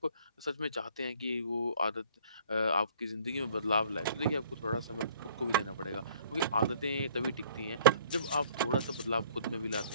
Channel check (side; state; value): both; inverted; correlation -0.57